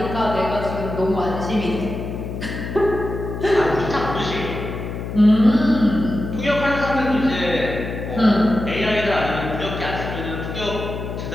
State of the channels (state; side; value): noise; left; hum, 6 dB below the sound